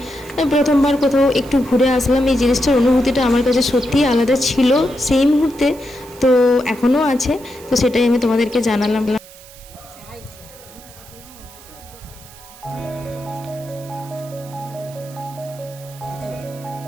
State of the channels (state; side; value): noise; right; hiss, 21 dB below the sound